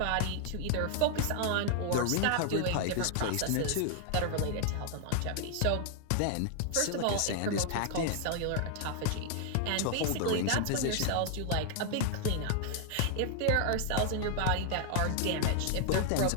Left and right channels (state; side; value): different; both; correlation 0.00